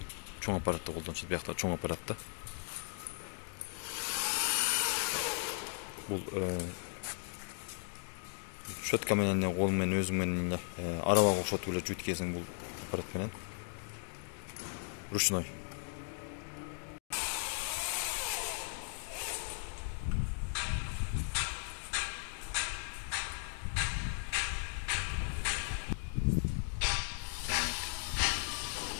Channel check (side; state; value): right; silent; 53 dB below the other